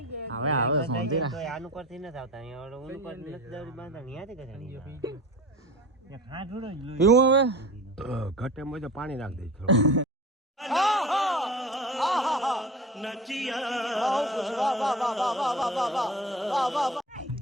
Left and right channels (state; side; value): normal; both; correlation 0.35